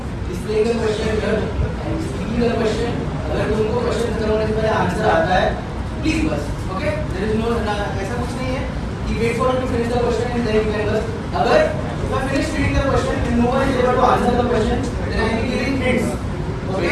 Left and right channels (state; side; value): identical; both; correlation 1.00